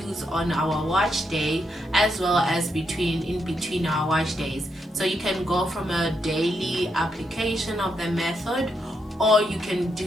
on our wash day as well as in between our wash days. So you can go from a daily application of the method, or you can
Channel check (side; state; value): both; normal; correlation 0.80